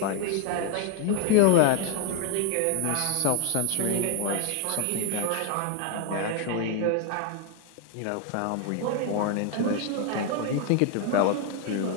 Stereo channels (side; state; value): both; different; correlation 0.01